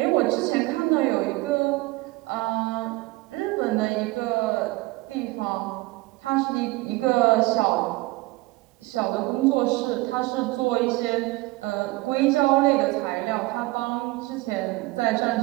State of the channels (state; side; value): quieter; left; 21.6 dB